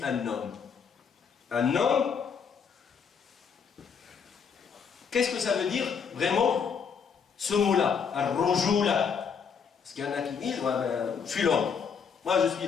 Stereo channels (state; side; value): quieter; right; 6.5 dB